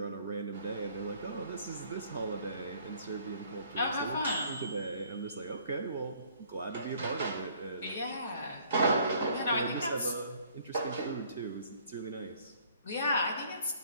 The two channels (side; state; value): both; inverted; correlation -0.59